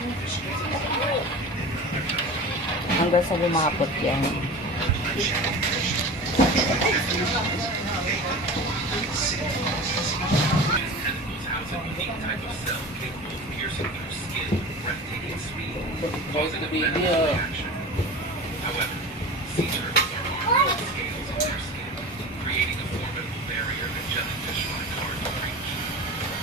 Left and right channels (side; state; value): both; normal; correlation 0.33